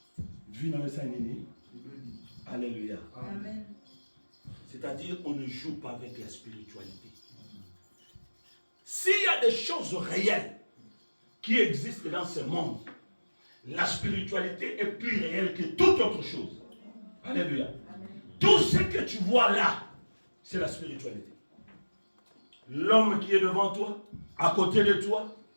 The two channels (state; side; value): inverted; both; correlation -1.00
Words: Alléluia. Amen. C'est-à-dire, on ne joue pas avec la spiritualité. S'il y a des choses réelles qui existent dans ce monde, la spiritualité est plus réelle que toute autre chose. Alléluia. Tout ce que tu vois là, c'est la spiritualité. L'homme qui est devant toi, à côté de toi,